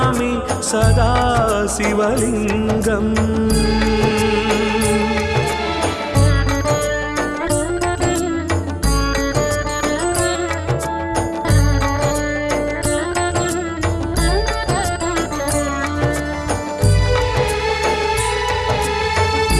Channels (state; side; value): identical; both; correlation 1.00